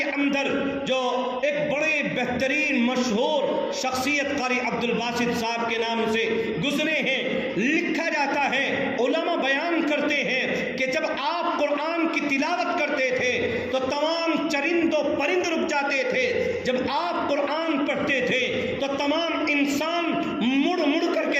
اندر جو ایک بڑے بہترین مشہور شخصیت قاری عبد الباسط صاحب کے نام سے گزرے ہیں، لکھا جاتا ہے، علماء بیان کرتے ہیں کہ جب آپ قرآن کی تلاوت کرتے تھے تو تمام چرند و پرند رک جاتے تھے، جب آپ قرآن پڑھتے تھے تو تمام انسان مڑ مڑ کر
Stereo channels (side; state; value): both; identical; correlation 1.00